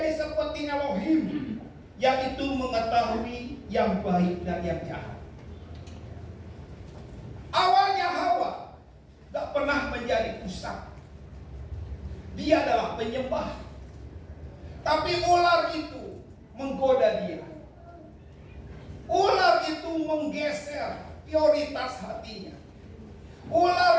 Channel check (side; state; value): both; identical; correlation 1.00